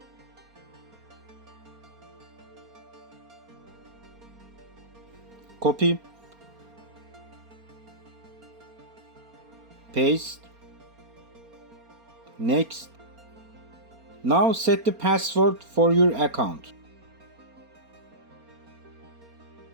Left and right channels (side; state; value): left; late; 4.3 ms